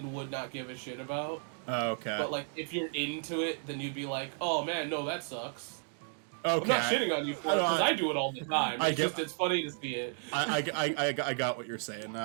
would not give a shit about. Oh, okay. But like, if you're into it, then you'd be like, oh man, no, that sucks. Okay. I'm not shitting on you for it, because I do it all the time. It's funny to see it. I got what you're saying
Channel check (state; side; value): silent; left; 56 dB below the other